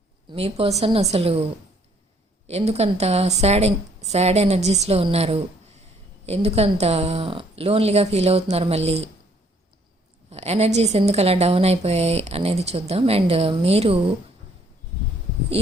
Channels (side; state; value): both; normal; correlation 0.64